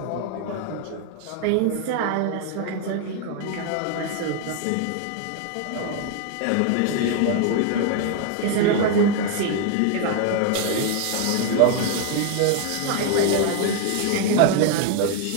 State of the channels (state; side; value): different; both; correlation 0.00